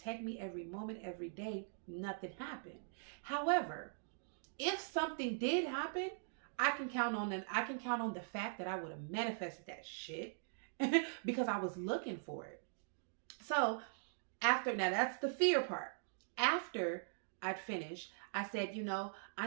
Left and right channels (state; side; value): silent; left; digital silence